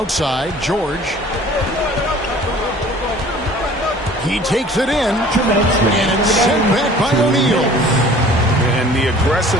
George. He takes it in, and it's sent back by O'Neal. And the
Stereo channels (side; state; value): both; normal; correlation 0.49